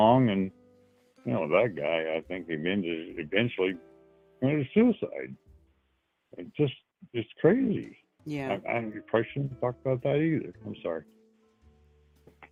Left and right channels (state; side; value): identical; both; correlation 1.00